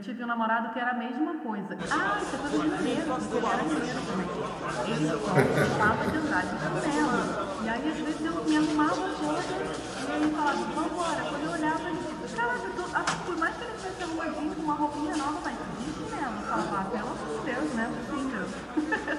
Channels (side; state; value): both; identical; correlation 1.00